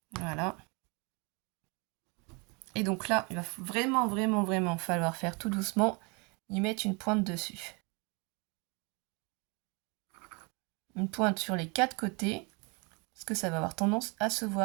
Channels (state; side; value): quieter; left; 31.2 dB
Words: Voilà. Et donc là, il va vraiment falloir faire tout doucement, y mettre une pointe dessus. Une pointe sur les 4 côtés, parce que ça va avoir tendance à se